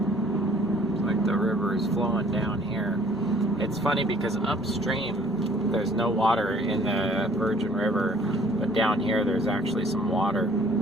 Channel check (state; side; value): normal; both; correlation 0.57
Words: It's like the river is flowing down here. It's funny because upstream there's no water in the Virgin River, but down here there's actually some water